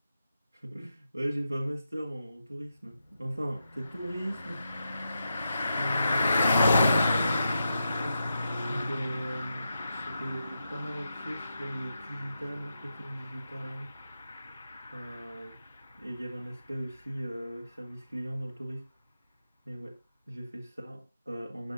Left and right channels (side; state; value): both; inverted; correlation -0.87